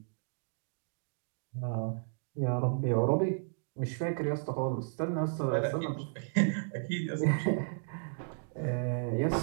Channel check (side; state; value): left; silent; digital silence